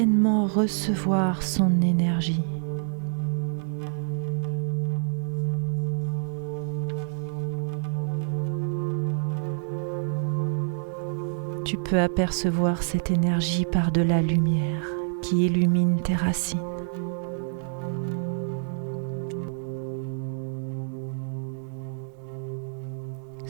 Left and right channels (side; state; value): left; silent; 60 dB below the other